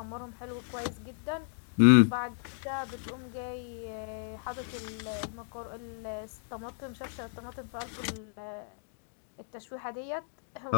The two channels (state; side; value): silent; right; digital silence